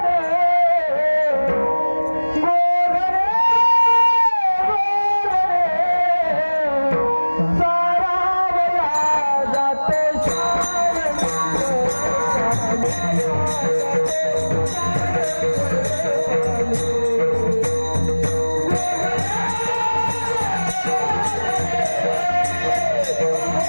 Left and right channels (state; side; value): inverted; both; correlation -1.00